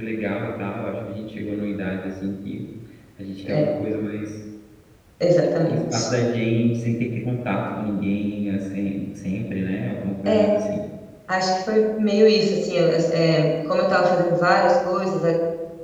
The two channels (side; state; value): both; identical; correlation 1.00